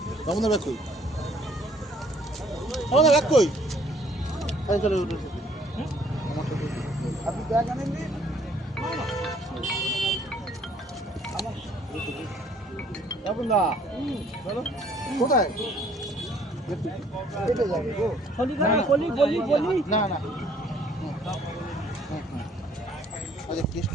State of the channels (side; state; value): both; normal; correlation 0.60